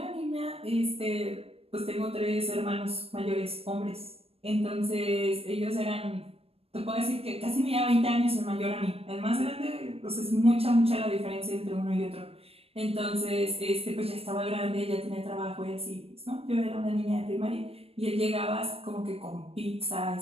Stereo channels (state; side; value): late; left; 0.28 ms